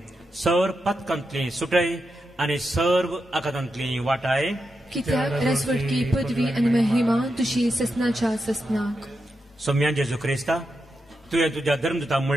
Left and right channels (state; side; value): normal; both; correlation 0.87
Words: सर पथकांतली सुटय आनी सर्व आकांतांतली वाटाय. कित्याक राजवटकी पदवी आनी महिमा तुशी ससनाच्या ससनाक. सोम्या जेजू क्रिस्ता, तुवें तुज्या धर्मदूताक